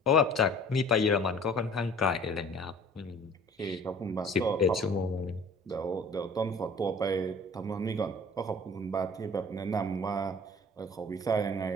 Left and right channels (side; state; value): both; normal; correlation 0.48